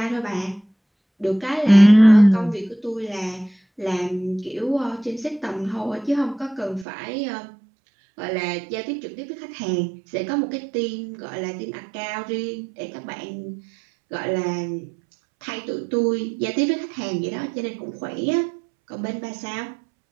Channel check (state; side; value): drops out; left; at 6.9 s